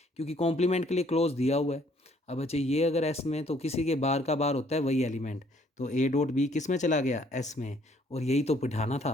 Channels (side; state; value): both; normal; correlation 0.63